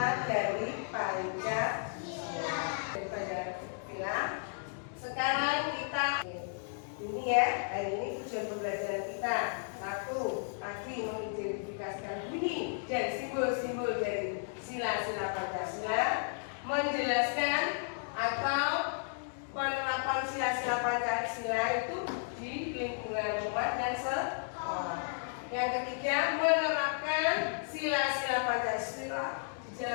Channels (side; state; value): right; silent; digital silence